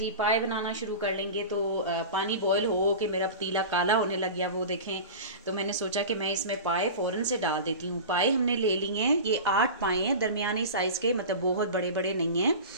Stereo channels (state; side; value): inverted; both; correlation -0.31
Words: पाए बनाना शुरू कर लेंगे तो पानी बॉईल हो के मेरा पतीला काला होने लग गया, वो देखें। तो मैंने सोचा कि मैं इसमें पाए फ़ौरन से डाल देती हूँ। पाए हमने ले लिए हैं, ये 8 पाए हैं, दरमियानी साइज़ के, मतलब बहुत बड़े बड़े नहीं हैं।